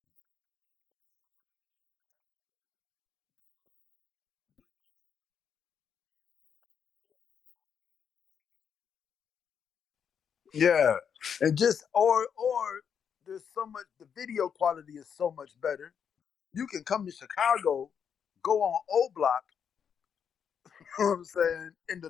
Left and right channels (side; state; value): right; quieter; 7.4 dB